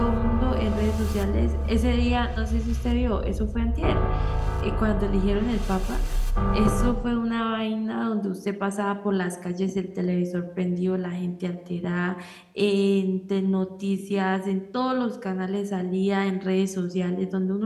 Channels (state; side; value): identical; both; correlation 1.00